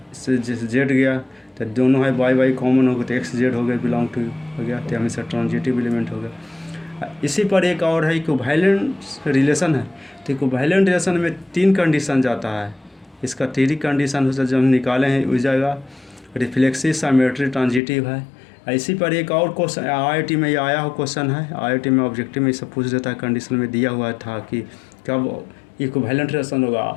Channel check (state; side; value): drops out; right; at 17.8 s